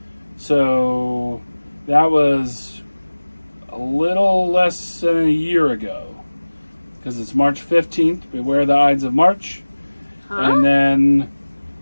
So that was a little less than a year ago. Because it's March 15th. Beware the Ides of March. Huh? And then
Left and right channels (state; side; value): inverted; both; correlation -1.00